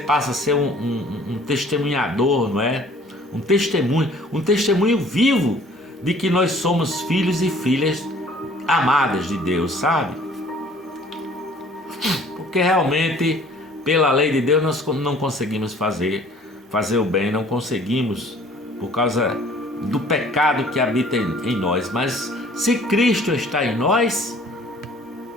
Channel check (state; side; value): normal; both; correlation 0.54